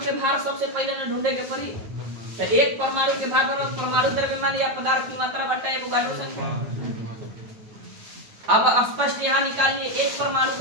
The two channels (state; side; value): late; left; 9.2 ms